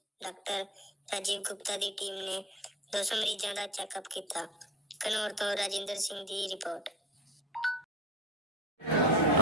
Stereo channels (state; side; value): normal; both; correlation 0.34